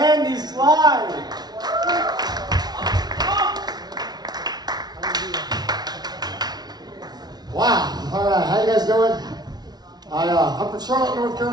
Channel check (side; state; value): left; late; 0.19 ms